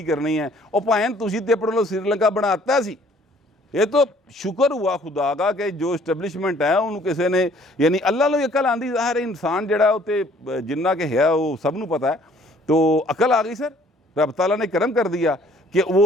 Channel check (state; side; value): normal; both; correlation 0.58